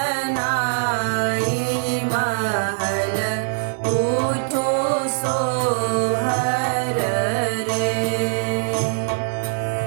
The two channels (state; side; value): silent; left; digital silence